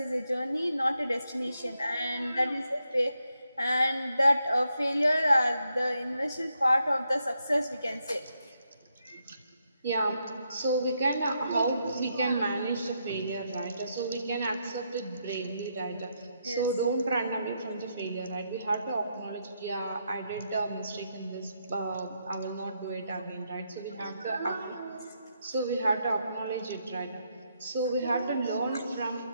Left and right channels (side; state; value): both; inverted; correlation -0.80